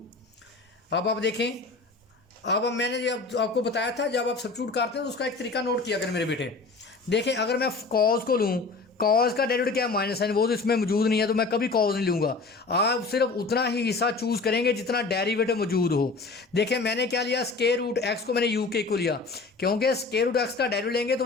अब आप देखें, अब मैंने जब आपको बताया था जब आप सब्स्टिट्यूट करते हैं तो उसका एक तरीका नोट किया करें मेरे बेटे। देखें अगर मैं कॉज को लूँ, कॉज का डेरिवेटिव क्या है माइनस साइन, वो तो इसमें मौजूद नहीं है तो मैं कभी कॉज नहीं लूँगा। आप सिर्फ उतना ही हिस्सा चूज़ करेंगे जितना डेरिवेटिव मौजूद हो। देखें मैंने क्या लिया स्क्वायर रूट एक्स को मैंने यू के को लिया, क्योंकि स्क्वायर रूट एक्स का डेरिवेटिव लेंगे तो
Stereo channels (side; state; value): right; quieter; 3.9 dB